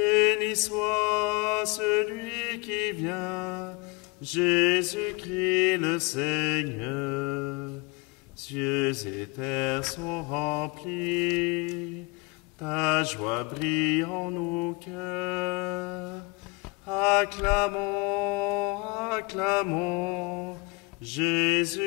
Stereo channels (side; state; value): right; quieter; 28.1 dB